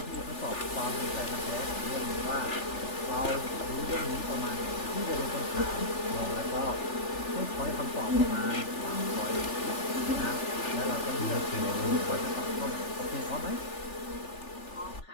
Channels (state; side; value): late; right; 3.4 ms